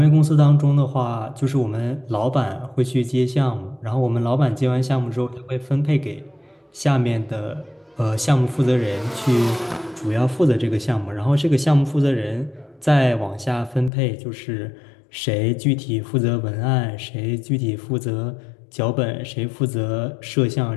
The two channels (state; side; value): drops out; right; at 13.9 s